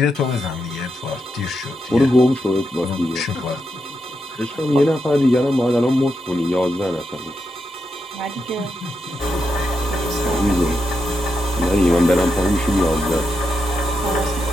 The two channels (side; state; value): both; normal; correlation 0.84